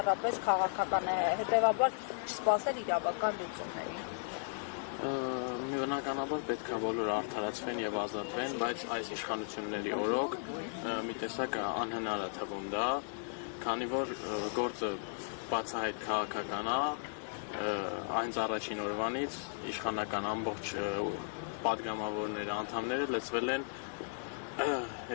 քաղաքական է, հետևաբար չսպասել իրավական լուծումների։ Բնականաբար պետք է բոլորը արդարացվեն եւ ազատվեն, բայց այս իշխանությունների օրոք մի տեսակ անհնար է թվում դա, քանի որ գործը բացահայտ քաղաքական է, այն առաջին օրվանից իշխանական ամբողջ պատգամավորները, անդամները լծվել են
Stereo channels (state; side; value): silent; right; 54 dB below the other